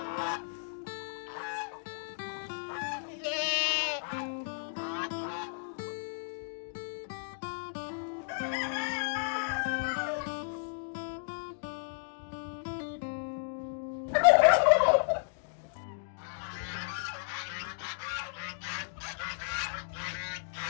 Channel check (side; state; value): right; silent; digital silence